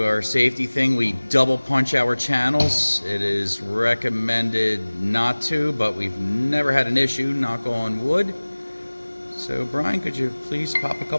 our safety thing. We double punch our channels. It is recommended not to, but we've never had an issue, knock on wood. So Brian, could you please pop a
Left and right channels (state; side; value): inverted; both; correlation -1.00